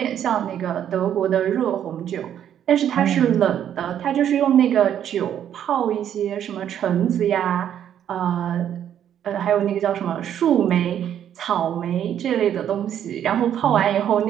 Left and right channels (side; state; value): left; quieter; 9.9 dB